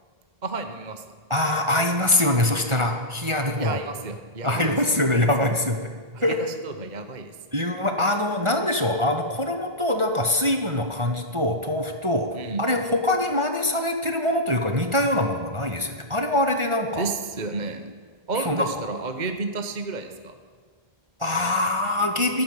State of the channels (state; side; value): late; left; 1.4 ms